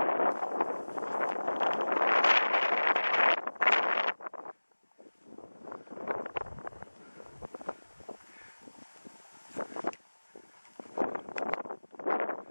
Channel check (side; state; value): both; inverted; correlation -1.00